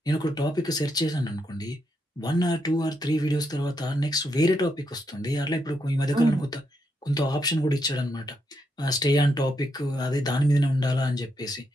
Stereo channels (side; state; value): both; normal; correlation 0.80